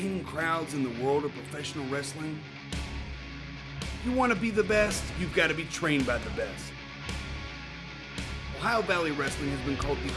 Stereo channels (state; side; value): identical; both; correlation 1.00